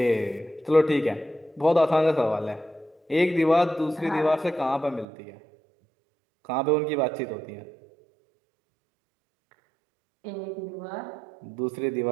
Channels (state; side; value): drops out; left; at 5.1 s